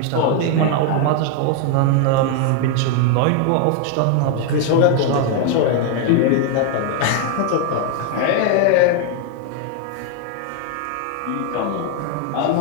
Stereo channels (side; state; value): both; different; correlation 0.00